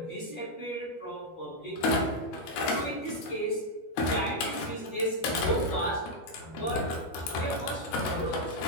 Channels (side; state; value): right; late; 12 ms